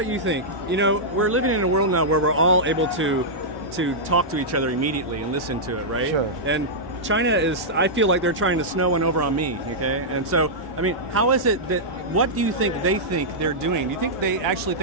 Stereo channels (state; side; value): normal; both; correlation -0.10